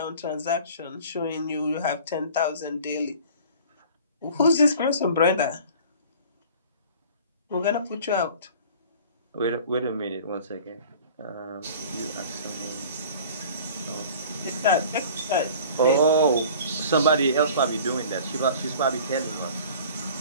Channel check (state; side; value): inverted; both; correlation -0.45